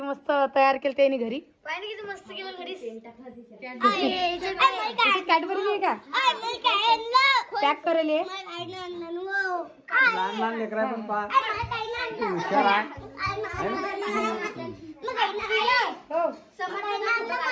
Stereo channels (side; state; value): both; identical; correlation 1.00